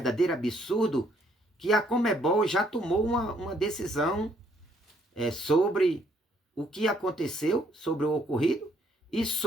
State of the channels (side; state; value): both; normal; correlation 0.68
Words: absurdo que a Conmebol já tomou uma decisão sobre o que aconteceu, sobre o ocorrido e